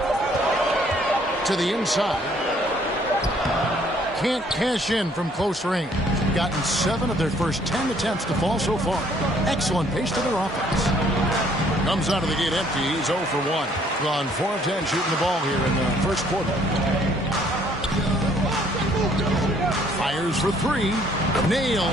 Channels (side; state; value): both; normal; correlation 0.63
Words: To the inside. Can't cash in from close range. Gotten 7 of their first 10 attempts to fall so far. Excellent pace to their offense. Comes out of the gate empty. He's 0 for 1. Gone 4 of 10 shooting the ball here in the first quarter. Fires for 3.